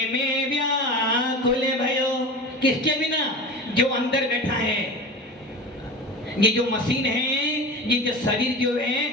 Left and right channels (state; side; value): normal; both; correlation 0.31